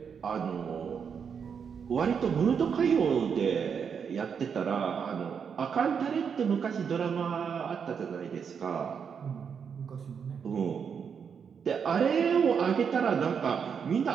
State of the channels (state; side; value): quieter; left; 6.8 dB